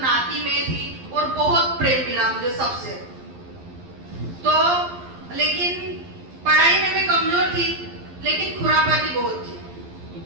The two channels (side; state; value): left; late; 11 ms